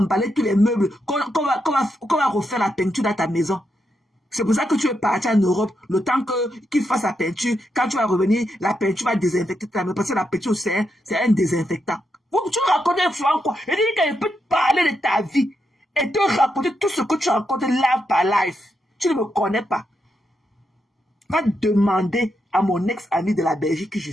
tous les meubles, qu'on va refaire la peinture dans ta maison. C'est pour ça que tu es parti en Europe, le temps qu'ils fassent la peinture. Quand tu vas revenir, la peinture va désinfecter ta maison, parce que la peinture, c'est un désinfectant. Tu racontes un fois quoi? Et dis qu'elle peut te parler de ta vie et te raconter tout ce que tu racontes live par live. Tu ne me connais pas. Va demander à mon ex-ami de la Belgique qui je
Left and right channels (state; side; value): normal; both; correlation 0.83